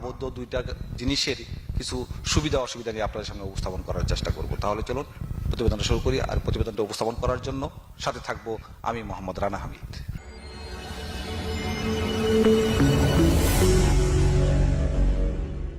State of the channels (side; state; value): both; identical; correlation 1.00